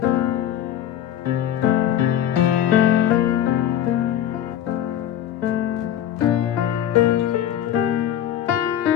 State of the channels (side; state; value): right; quieter; 10.8 dB